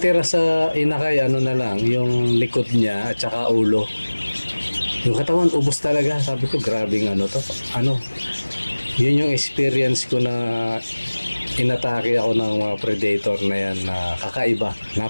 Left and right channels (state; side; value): inverted; both; correlation -1.00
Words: sa inakay, na lang, yung likod niya at saka ulo. Yung katawan, ubos talaga. Sabi ko, grabing to. Yun yung experience ko na inatake ako ng mga predator na yan na kakaiba.